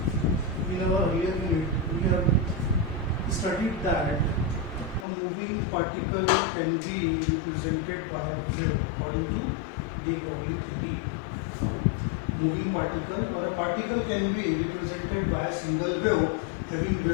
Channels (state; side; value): drops out; right; at 5.1 s